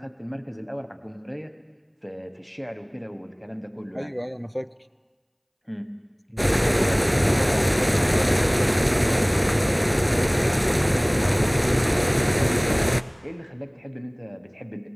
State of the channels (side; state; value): both; identical; correlation 1.00